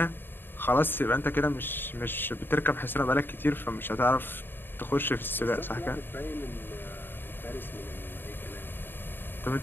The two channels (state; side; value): late; right; 0.097 ms